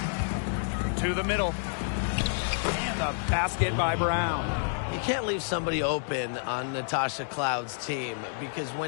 To the middle. And the basket by Brown. You can't leave somebody open on Natasha Cloud's team, because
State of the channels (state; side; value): silent; right; digital silence